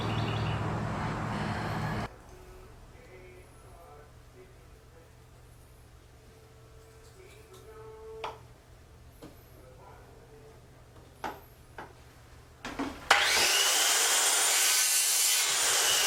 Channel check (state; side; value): identical; both; correlation 1.00